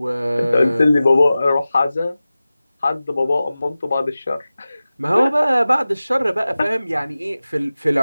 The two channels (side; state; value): both; inverted; correlation -0.96